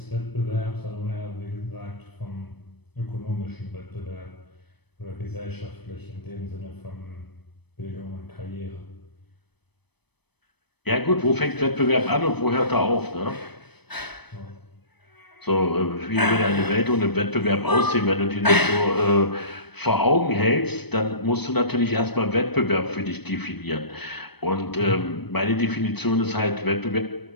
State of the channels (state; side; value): late; right; 0.98 ms